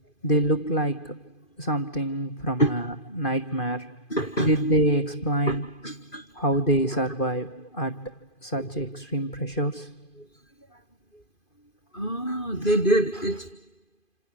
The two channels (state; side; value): late; right; 2.5 ms